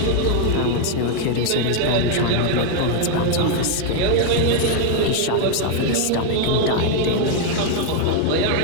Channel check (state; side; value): different; both; correlation 0.00